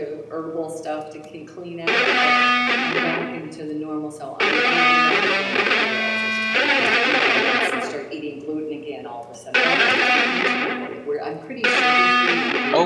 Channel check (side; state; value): both; identical; correlation 1.00